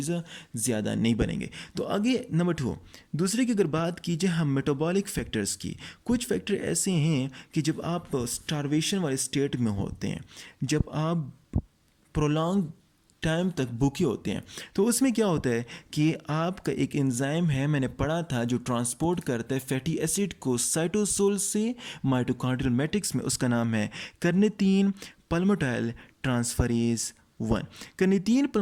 ज़्यादा नहीं बनेंगे। तो आगे नंबर 2, दूसरे की अगर बात कीजिए हम मेटाबॉलिक फैक्टर्स की, कुछ फैक्टर ऐसे हैं कि जब आप स्टारवेशन वाले स्टेट में होते हैं, जब आप प्रोलॉन्ग टाइम तक भूखे होते हैं, तो उसमें क्या होता है कि आपका एक एंजाइम है, मैंने पढ़ा था, जो ट्रांसपोर्ट करता है फैटी एसिड को साइटोसोल से माइटोकॉन्ड्रियल मैट्रिक्स में, उसका नाम है carnitine palmitoyl transferase 1। Carnitine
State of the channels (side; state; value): both; identical; correlation 1.00